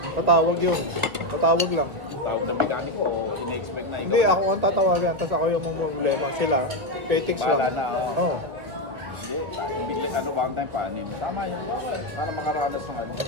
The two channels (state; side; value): late; left; 2.0 ms